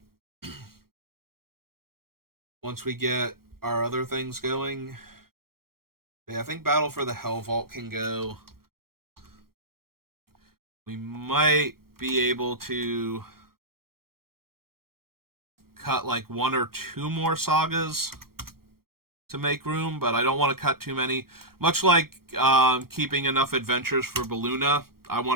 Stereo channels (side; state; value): left; late; 0.94 ms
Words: once we get our other things going. Yeah, I think Battle for the Hell Vault can go. We might be able to cut like 1 or 2 more sagas to make room, but I don't want to cut too many. Much like keeping enough adventures for Balluna, I